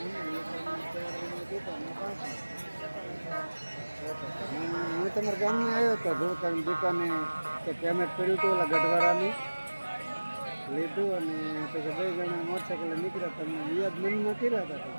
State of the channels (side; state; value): both; inverted; correlation -1.00